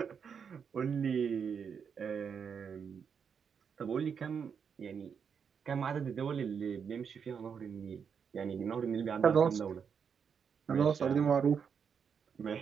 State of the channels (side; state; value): left; quieter; 6.8 dB